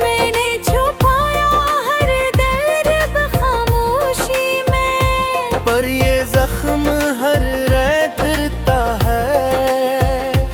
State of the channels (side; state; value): both; identical; correlation 1.00